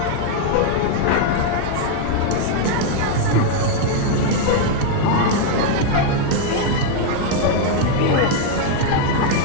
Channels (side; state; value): both; different; correlation 0.00